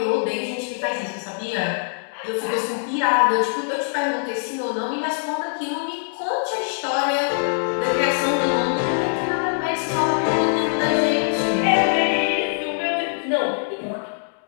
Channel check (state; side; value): silent; right; digital silence